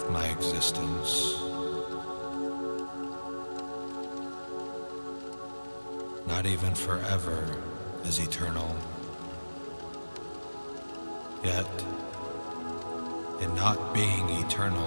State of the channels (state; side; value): inverted; both; correlation -1.00